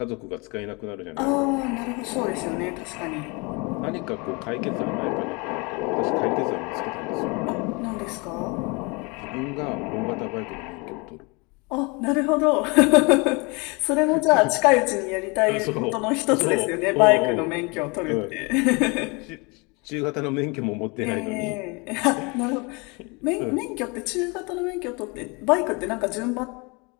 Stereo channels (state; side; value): quieter; right; 29.0 dB